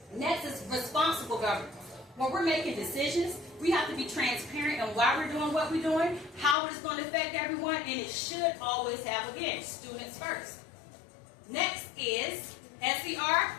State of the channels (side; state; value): right; drops out; at 6.6 s